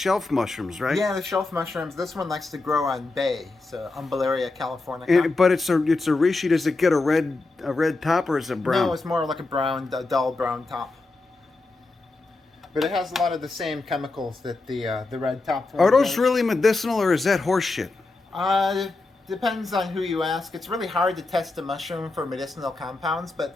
mushrooms, right? Yeah, the shelf mushrooms. This one likes to grow on bay, so Umbelleria californica. But it's a reishi. Does it get a red top or is it brown? No, it's more like a dull brown top. But it has a lot of the same chemicals that the red top one Are those does. really medicinal or is that horse shit? Depends on who you ask. It's really hard to test a mushroom for medicinal compounds, but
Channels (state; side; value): quieter; right; 3.4 dB